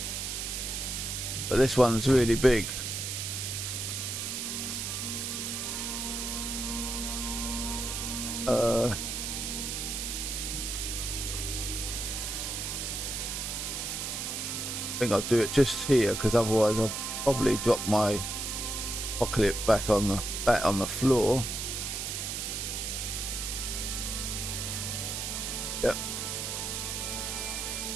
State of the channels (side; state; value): right; noise; hiss, 3 dB below the sound